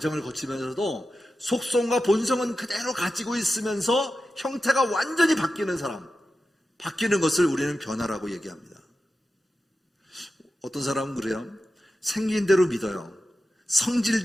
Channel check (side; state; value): both; normal; correlation 0.92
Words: 거치면서도 속성과 본성은 그대로 가지고 있으면서 형태가 완전히 바뀌는 사람, 바뀌는 것을 우리는 변화라고 얘기합니다. 어떤 사람은 그래요. 생긴 대로 믿어요.